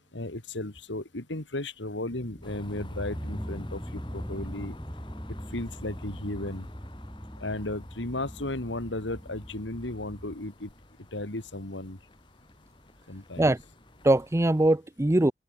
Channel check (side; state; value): both; normal; correlation 0.69